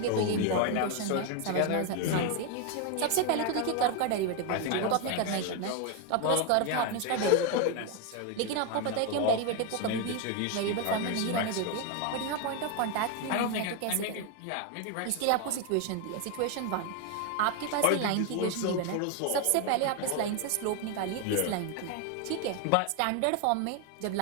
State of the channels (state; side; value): different; both; correlation 0.01